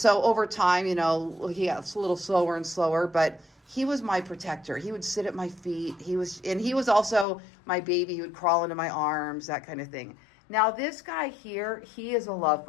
over time, he got a little slower and slower, but he was my protector. He would sit at my feet. He was also my baby. He would crawl into my arms, that kind of thing. Now this guy here, he is a love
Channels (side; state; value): right; drops out; at 7.2 s